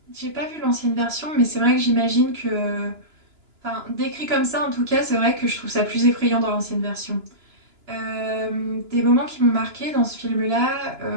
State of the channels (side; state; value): left; late; 2.9 ms